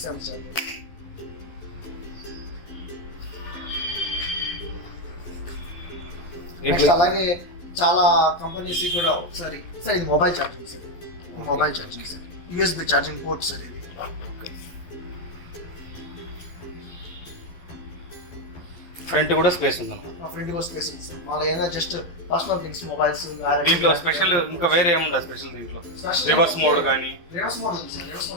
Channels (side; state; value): right; late; 12 ms